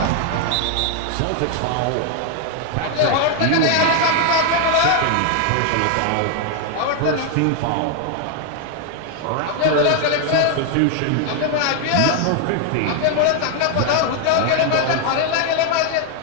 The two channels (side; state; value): both; different; correlation 0.00